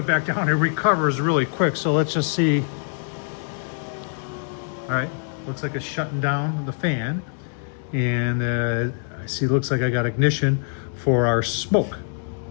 back down, it recovers really quick. So let's just see. All right, looks like it's shutting down the fan. And I see, looks like I got ignition for our smoke.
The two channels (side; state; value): right; silent; 60 dB below the other